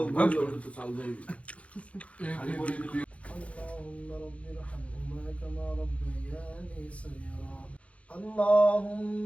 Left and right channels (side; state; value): right; late; 0.064 ms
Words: বলবো তো চাল দেই। اللهم رب ارحمهما كما ربياني صغيرا. اللهم